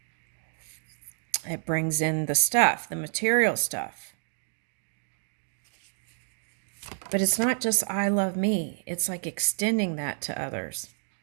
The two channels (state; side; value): silent; left; 59 dB below the other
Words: It brings in the stuff, the material stuff. But it's not just I love me. It's like extending that to others.